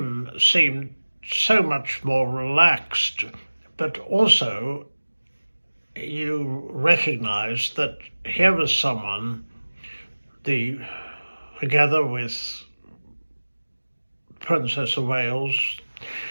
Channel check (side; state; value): both; inverted; correlation -1.00